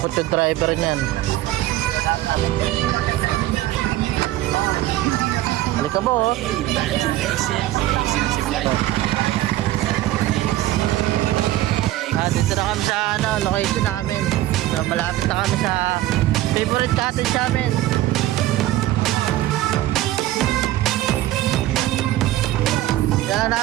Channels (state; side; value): quieter; left; 15.3 dB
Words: takot yung driver niyan. Halika mo, oh. Dito na kami sa location namin. So, malapit na kami sa favorite cottage namin. Yan lang